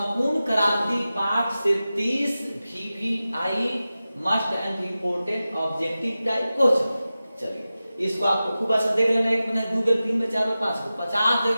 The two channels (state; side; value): inverted; both; correlation -0.95